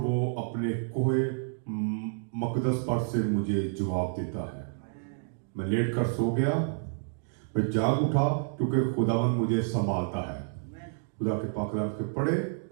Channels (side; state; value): left; silent; digital silence